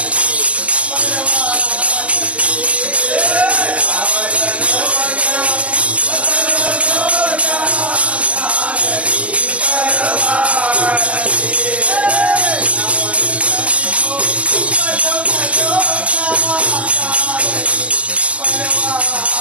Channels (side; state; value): left; late; 0.066 ms